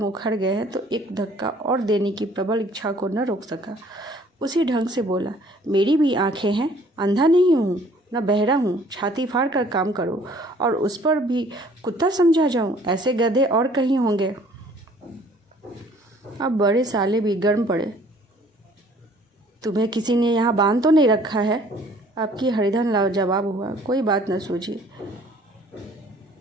उखड़ गए हैं तो एक धक्का और देने की प्रबल इच्छा को न रोक सका। उसी ढंग से बोला, मेरी भी आंखें हैं, अंधा नहीं हूँ न बहरा हूँ। छाती फाड़ कर काम करो और उस पर भी कुत्ता समझा जाऊँ, ऐसे गधे और कहीं होंगे। अब बड़े साले भी गर्म पड़े। तुम्हें किसी ने यहाँ बांध तो नहीं रखा है? आपकी हरिधन लाजवाब हुआ, कोई बात न सूझी।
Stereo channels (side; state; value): both; normal; correlation 0.56